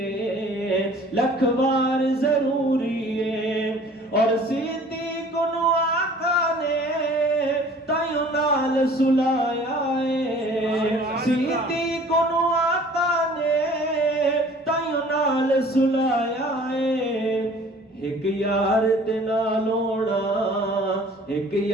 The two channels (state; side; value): normal; both; correlation 0.50